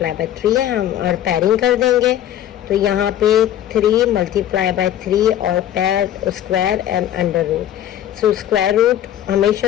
by 3 है हम, और पेयरिंग कर देंगे. तो यहाँ पे 3 मल्टीप्लाई बाय 3 और pair square and under root. So square root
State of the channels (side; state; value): right; quieter; 11.5 dB